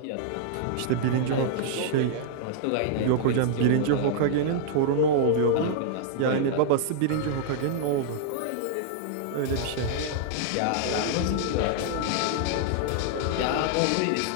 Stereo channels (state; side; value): different; both; correlation -0.01